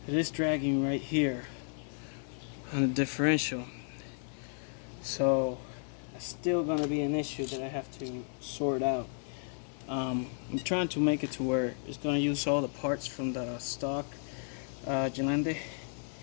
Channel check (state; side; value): silent; right; 56 dB below the other